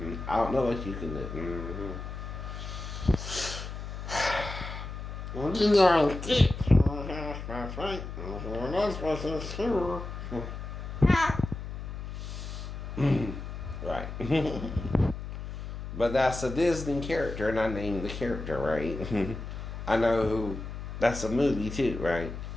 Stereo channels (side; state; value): left; noise; hum, 8 dB below the sound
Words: I don't know what you can do. Well, you are a dick. That's right. We're not supposed to sure. Right. But that's a Disney character, and I named the character, right? I know who. That's a movie too, right?